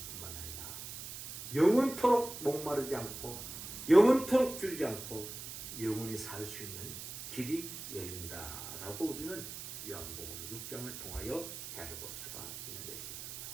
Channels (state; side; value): noise; right; hiss, 9 dB below the sound